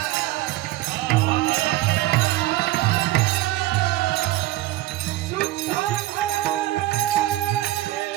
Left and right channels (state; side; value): quieter; left; 16.6 dB